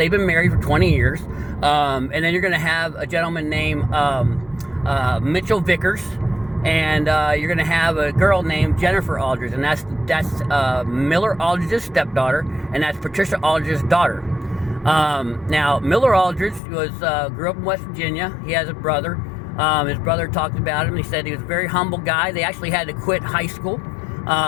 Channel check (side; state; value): right; drops out; at 16.6 s